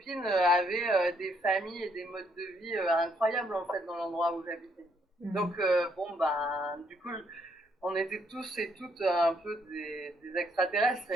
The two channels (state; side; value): normal; both; correlation 0.71